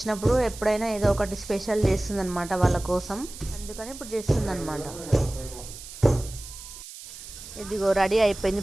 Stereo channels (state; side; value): noise; right; hiss, 14 dB below the sound